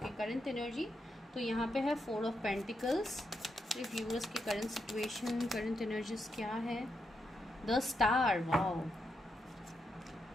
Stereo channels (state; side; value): normal; both; correlation 0.83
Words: की करंट एनर्जी। तो यहाँ पे है 4 ऑफ पेंटिकल्स, व्यूअर्स की करंट सिचुएशन, करंट एनर्जीज क्या है। The star, wow,